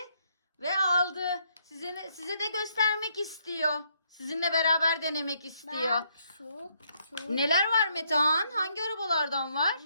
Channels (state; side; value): inverted; both; correlation -0.71